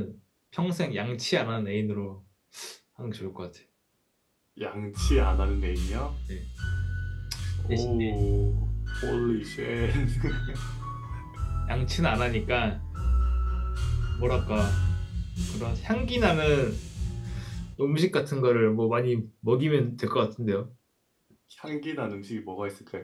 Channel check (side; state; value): both; identical; correlation 1.00